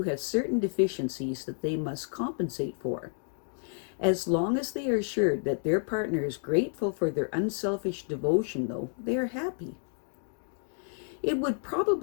have certain deficiencies that they must compensate for. As long as they are assured that their partner is grateful for their unselfish devotion, though, they are happy. It would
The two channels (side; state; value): right; silent; 58 dB below the other